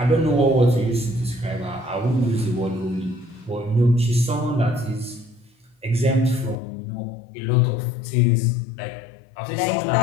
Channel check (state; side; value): drops out; right; at 6.6 s